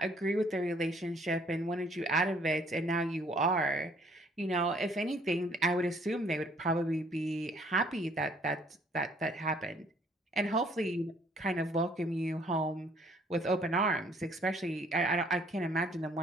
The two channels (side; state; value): both; normal; correlation 0.62